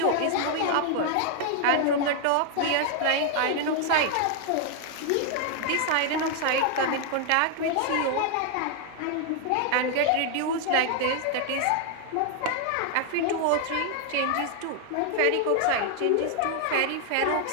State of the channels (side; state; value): both; different; correlation 0.00